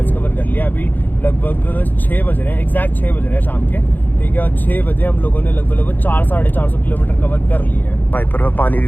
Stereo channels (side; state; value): right; late; 0.087 ms